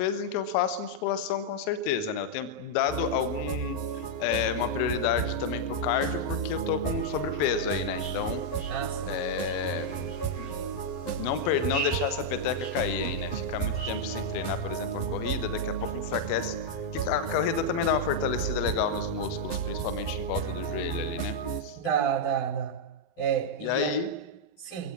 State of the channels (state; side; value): late; right; 12 ms